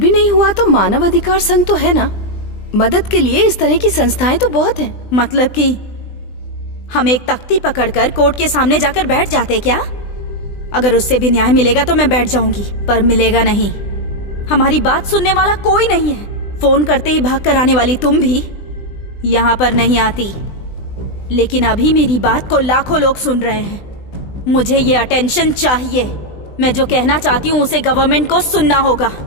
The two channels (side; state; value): right; late; 20 ms